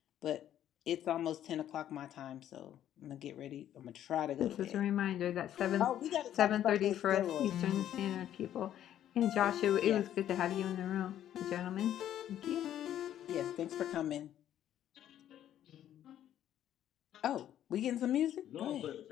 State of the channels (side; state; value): right; quieter; 11.2 dB